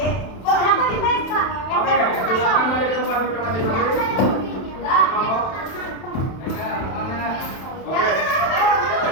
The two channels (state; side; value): late; right; 31 ms